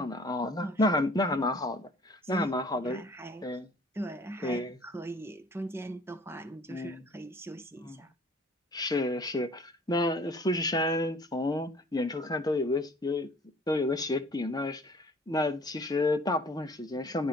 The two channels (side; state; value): both; normal; correlation 0.52